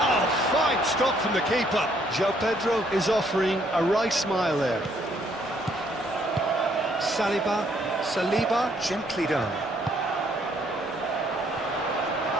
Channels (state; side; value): normal; both; correlation 0.68